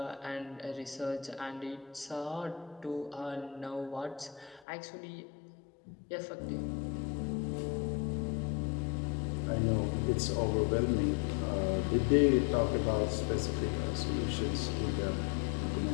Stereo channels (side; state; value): right; drops out; at 4.6 s